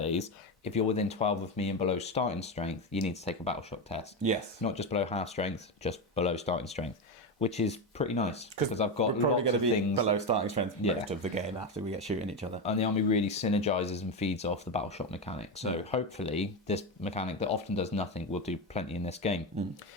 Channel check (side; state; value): both; normal; correlation 0.13